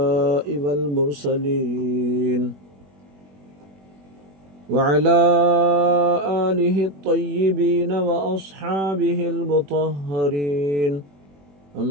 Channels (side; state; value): left; late; 21 ms